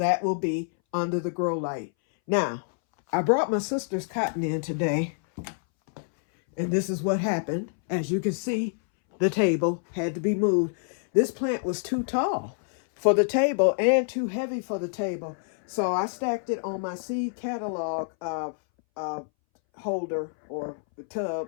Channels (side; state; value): right; silent; 60 dB below the other